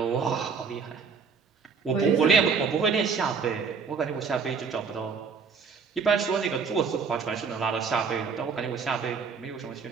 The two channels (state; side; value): quieter; left; 5.6 dB